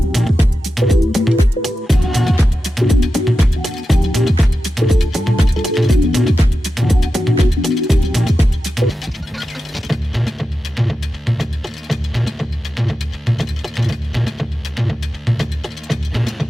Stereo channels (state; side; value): normal; both; correlation 0.91